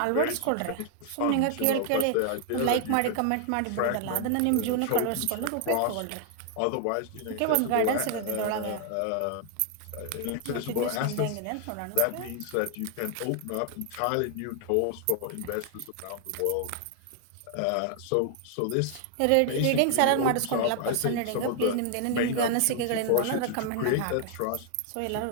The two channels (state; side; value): different; both; correlation 0.00